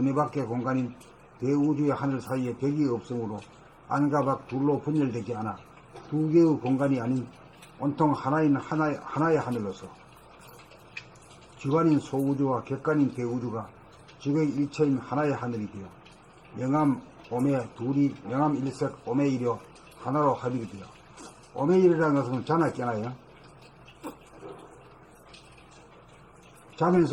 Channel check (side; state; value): both; identical; correlation 1.00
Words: 밖의 공간인 대우주의 하늘 사이에 벽이 없으므로 안과 밖 둘로 분열되지 않아 두 개의 공간이 아닌 온통 하나인 하나의 하늘로서 주관인 소우주와 객관인 대우주가 주객 일체인 하나의 하늘이 되어 영암, 오매 둘이 영암 일색 오매이려 하나로 합일이 되어 오매일이라는 것은 자나 깨나요?